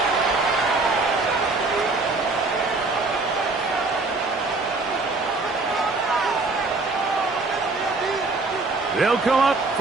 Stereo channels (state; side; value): quieter; left; 3.5 dB